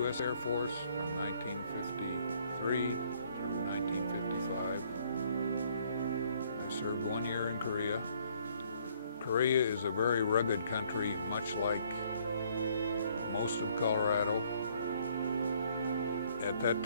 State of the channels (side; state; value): both; inverted; correlation -0.64